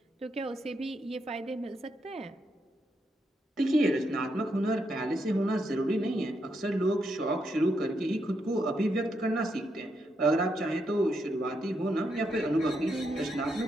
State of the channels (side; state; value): both; normal; correlation 0.80